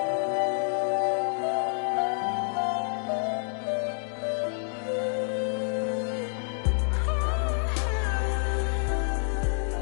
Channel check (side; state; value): right; silent; 59 dB below the other